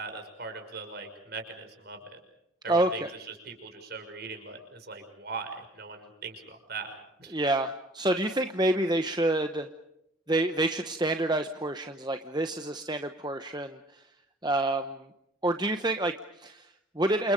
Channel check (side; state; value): both; normal; correlation 0.52